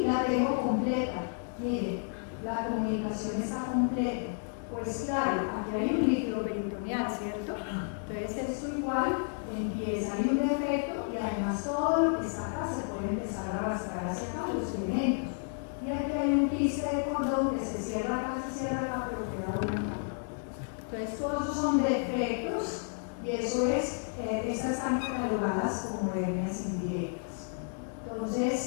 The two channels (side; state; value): right; silent; 57 dB below the other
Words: la tengo completa, miren, la comunicación está completa. Pues claro, aquí hay un líquido peritoneal, ¿cierto? Entonces esto igual empieza, hay un defecto y además todo lo que está acá se puede empezar a arrastrar hacia acá, los elementos. Y aquí hay un quiste de cordón que se cierra acá, pero queda una capa. Entonces todos esos son defectos y eso es, estas están catalogadas como hernias indirectas.